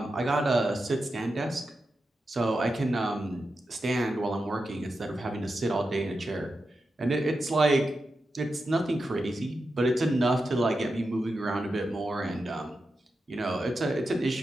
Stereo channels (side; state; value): both; normal; correlation 0.89